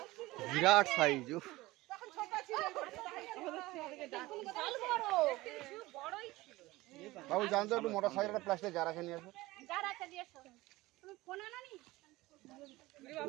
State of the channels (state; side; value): quieter; left; 19.3 dB